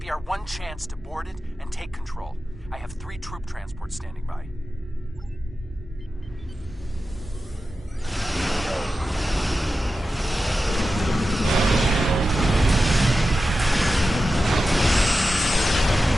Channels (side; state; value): both; normal; correlation 0.92